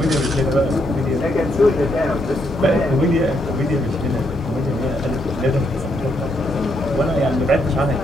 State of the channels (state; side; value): normal; both; correlation 0.76